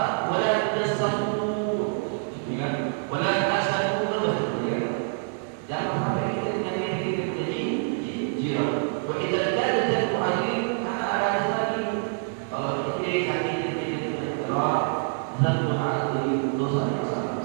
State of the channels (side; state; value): left; silent; 61 dB below the other